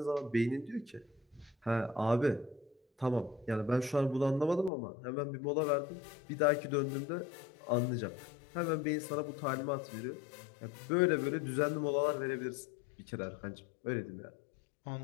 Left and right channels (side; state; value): right; drops out; at 4.7 s